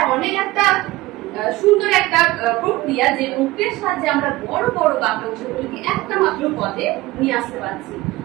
অনেক একটা সুন্দর একটা প্রক্রিয়া, যে প্রক্রিয়ার সাহায্যে আমরা বড় বড় বাক্যাংশগুলিকে একটা মাত্র পদে নিয়ে আসতে পারছি।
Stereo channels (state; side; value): quieter; left; 19.2 dB